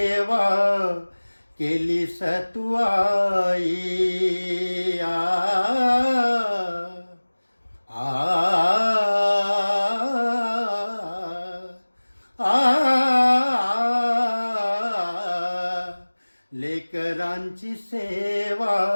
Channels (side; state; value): both; inverted; correlation -1.00